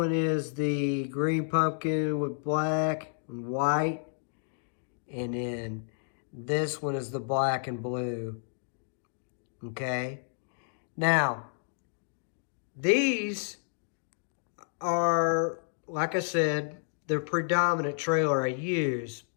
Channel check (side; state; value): right; silent; digital silence